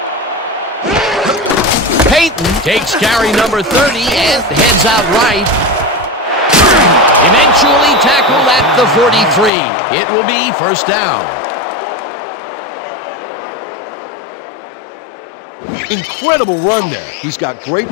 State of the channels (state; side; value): drops out; right; at 9.5 s